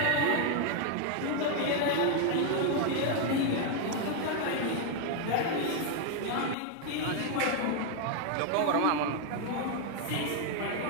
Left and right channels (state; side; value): different; both; correlation 0.00